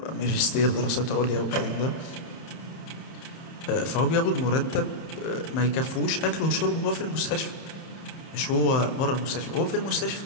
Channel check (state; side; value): late; right; 31 ms